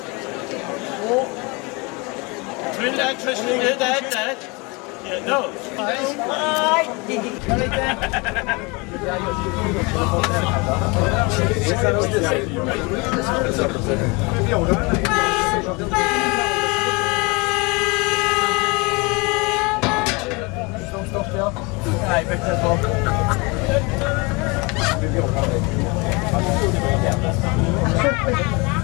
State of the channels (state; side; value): quieter; right; 27.7 dB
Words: cool. Trinidad, Tristan, Dad. Yeah, no.